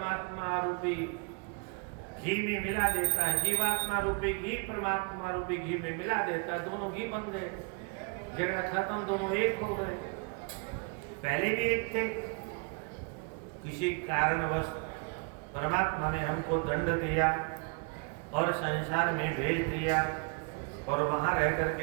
रूपी घी में मिला देता है। जीवात्मा रूपी घी परमात्मा रूपी घी में मिला देता है, दोनों घी बन गए, झगड़ा खत्म, दोनों एक हो गए। पहले भी एक थे, किसी कारणवश परमात्मा ने हमको दंड दिया और संसार में भेज दिया, और वहां रह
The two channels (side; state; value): left; quieter; 34.5 dB